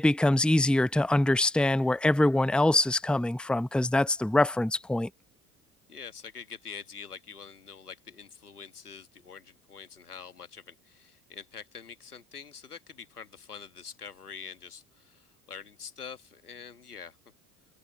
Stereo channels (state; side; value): normal; both; correlation 0.82